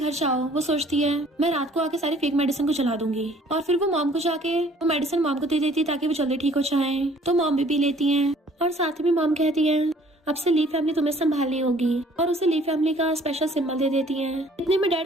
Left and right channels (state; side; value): normal; both; correlation 0.56